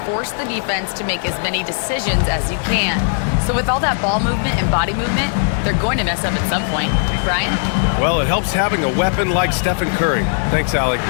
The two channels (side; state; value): right; silent; digital silence